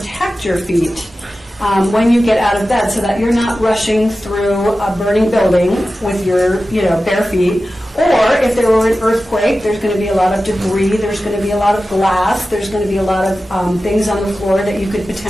your feet when you get out of bed, so that you're not rushing through a burning building with your bare feet. Or if there were an earthquake, there's going to be a lot of debris, there's going to be a lot of glass, there's going to be a lot of things on the floor that you could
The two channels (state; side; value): normal; both; correlation 0.94